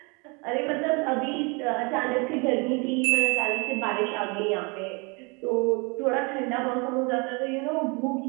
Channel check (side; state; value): left; quieter; 30.4 dB